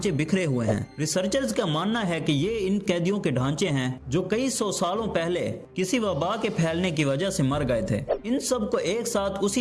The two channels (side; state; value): both; identical; correlation 1.00